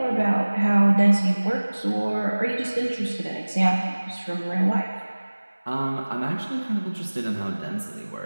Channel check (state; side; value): inverted; both; correlation -1.00